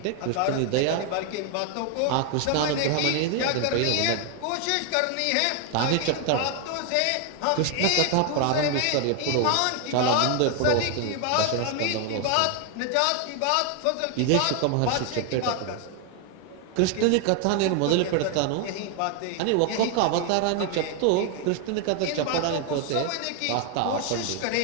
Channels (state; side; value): different; both; correlation 0.00